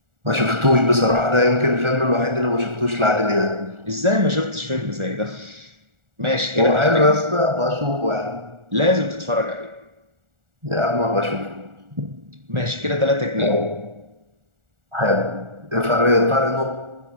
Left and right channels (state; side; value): late; left; 1.4 ms